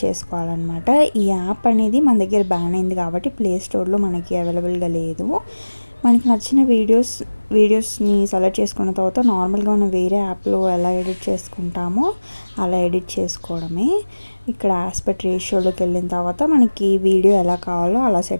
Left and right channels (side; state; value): both; inverted; correlation -1.00